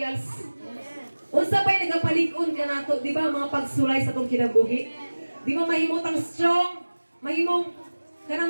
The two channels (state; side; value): inverted; both; correlation -1.00